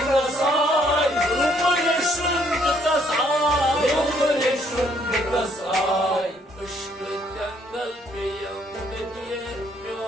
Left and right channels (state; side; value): normal; both; correlation 0.67